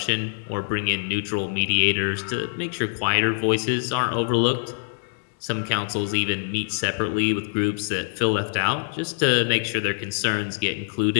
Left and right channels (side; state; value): right; silent; digital silence